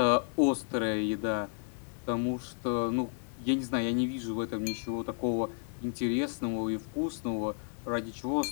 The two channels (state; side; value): silent; right; 56 dB below the other